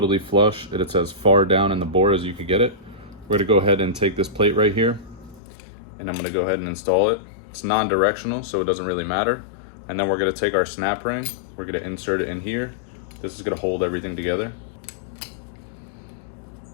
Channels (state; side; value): drops out; right; at 5.4 s